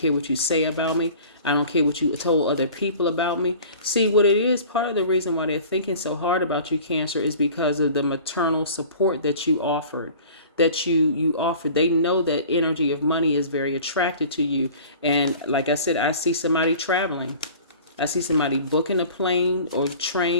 what you say about me. I don't care what you told other people about me. See, what it is, part of the reason why they're thinking so hard about you, Cancer, is because of the maternal support that you offered. You offered. They know that energy of money is very attracted to you. And like I said, I see somebody traveling. I see somebody booking a plane or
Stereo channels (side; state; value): both; inverted; correlation -0.44